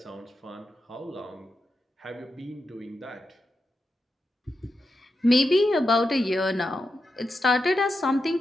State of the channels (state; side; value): normal; both; correlation 0.88